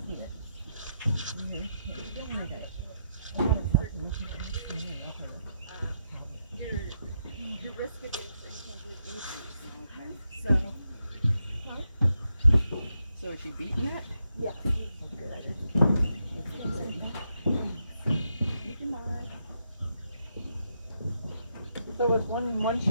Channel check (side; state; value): both; inverted; correlation -0.82